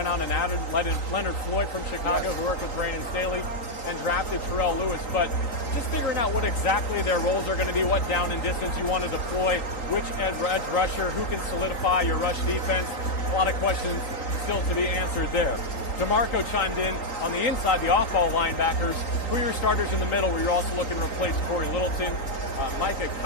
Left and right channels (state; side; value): late; right; 3.9 ms